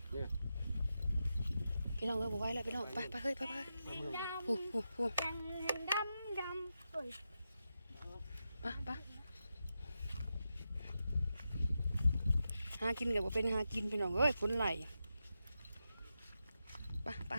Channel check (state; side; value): inverted; both; correlation -0.88